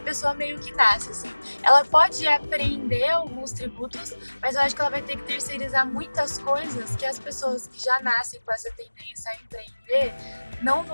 pessoa meio que nasce, assim. Ela pode aprender alguns tributos, mas eu acho que ela vai ter que terceirizar muitas coisas que as pessoas que já nascem com essa tendência a empreender não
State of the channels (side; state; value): both; inverted; correlation -1.00